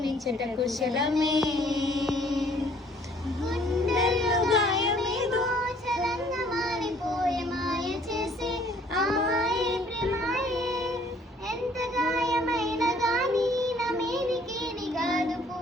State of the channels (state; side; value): normal; both; correlation 0.59